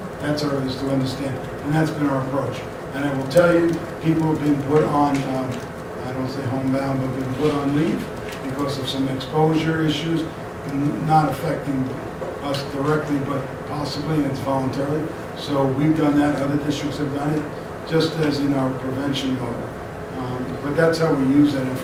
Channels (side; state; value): both; identical; correlation 1.00